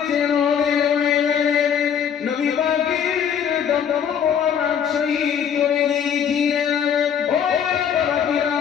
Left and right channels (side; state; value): right; quieter; 8.1 dB